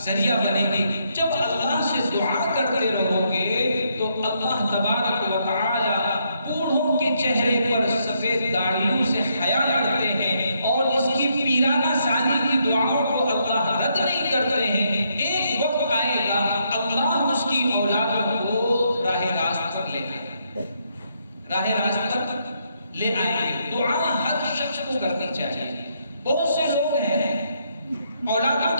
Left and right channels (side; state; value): both; inverted; correlation -0.75